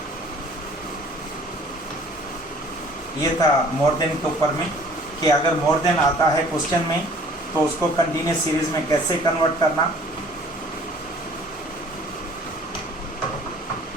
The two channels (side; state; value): both; normal; correlation 0.53